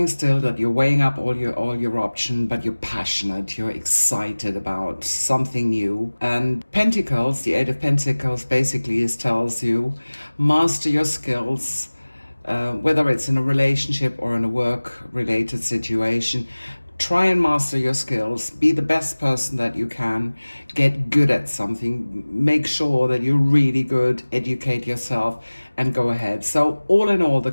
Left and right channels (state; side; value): inverted; both; correlation -1.00